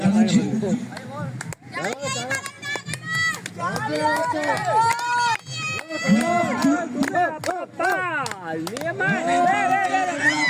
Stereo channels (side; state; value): both; identical; correlation 1.00